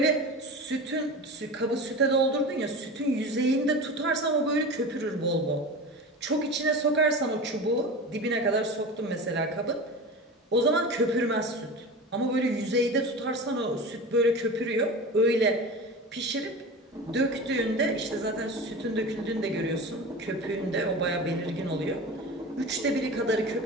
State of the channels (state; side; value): normal; both; correlation 0.31